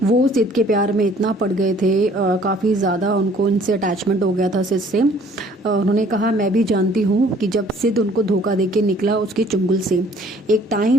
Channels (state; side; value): normal; both; correlation 0.56